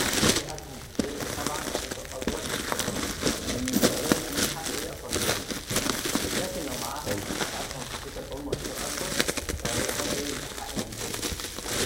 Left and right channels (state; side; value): identical; both; correlation 1.00